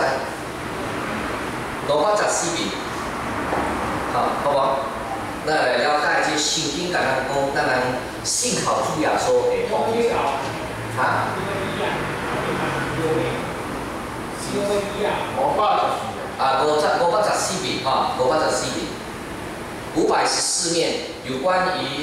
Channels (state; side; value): identical; both; correlation 1.00